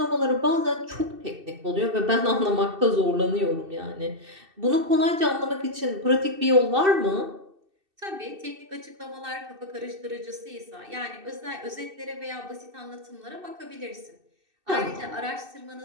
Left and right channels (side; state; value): left; late; 2.6 ms